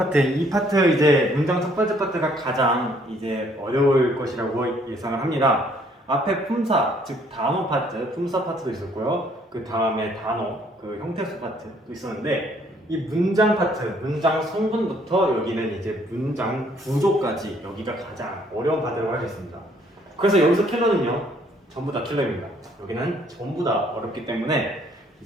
이 파트 이제 문장 첫 번째 파트가 가장 이제 어려울 것이라고 예상을 합니다. 앞에 품사, 즉 단어 파트, 품사 파트도 있었고요. 그 다음에 단어, 그 형태수 파트도 있었는데 이 문장 파트, 문장 성분부터 여기는 이제 문장 구조까지 여기가 가장 어려운 파트라고 할 수 있습니다. 그래서 여기서 킬러는요, 전부 다 킬러입니다. 여기는 전부 다 어렵기 때문에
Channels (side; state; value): both; normal; correlation 0.64